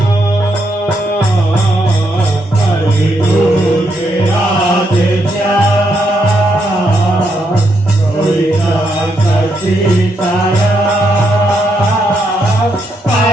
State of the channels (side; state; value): both; normal; correlation 0.78